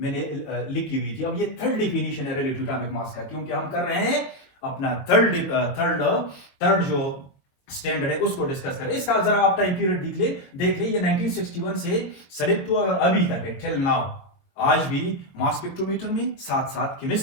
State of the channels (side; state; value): right; late; 22 ms